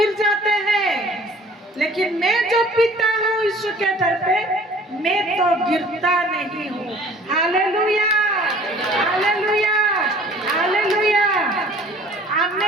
जाते हैं लेकिन मैं जो पीता हूँ यीशु के दर पे मैं तो गिरता नहीं हूँ हालेलुया हालेलुया हालेलुया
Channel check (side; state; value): both; normal; correlation 0.51